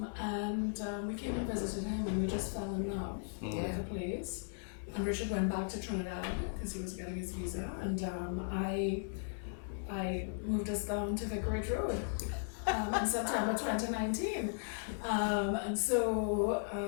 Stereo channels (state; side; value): silent; right; 53 dB below the other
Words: came and visited him, and we just fell in love with the place. And Richard went back to Trinidad because he was getting his visa, and I moved us down to Vicarage Road in September 2019. And